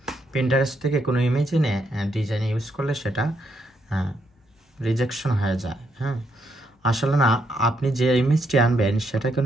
পিন্টারেস্ট থেকে কোনো ইমেজ এনে ডিজাইন ইউজ করলে সেটা রিজেকশন হয়ে যায়। আসলে না, আপনি যে ইমেজটি আনবেন সেটা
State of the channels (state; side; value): normal; both; correlation 0.76